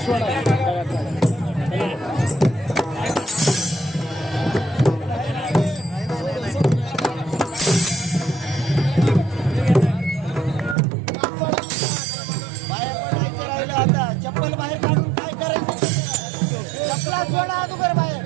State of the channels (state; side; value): drops out; left; at 10.8 s